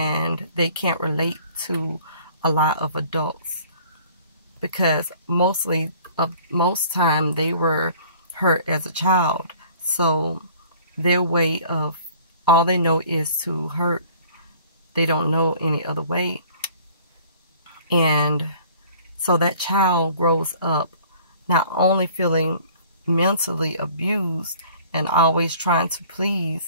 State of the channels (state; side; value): inverted; both; correlation -0.52